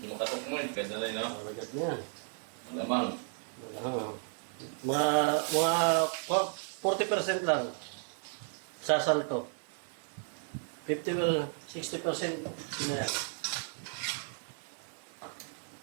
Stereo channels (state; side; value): silent; left; 55 dB below the other